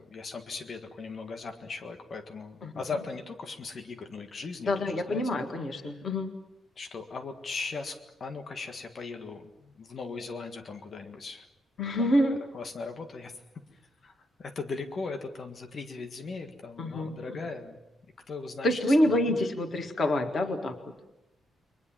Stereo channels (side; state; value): both; normal; correlation 0.77